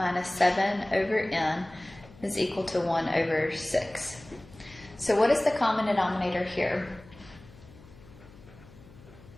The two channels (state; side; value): noise; left; hum, 22 dB below the sound